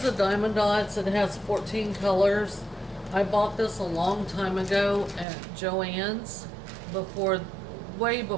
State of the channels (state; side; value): drops out; left; at 5.2 s